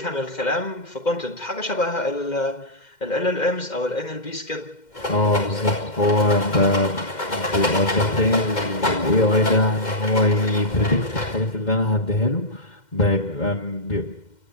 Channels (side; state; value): right; late; 2.1 ms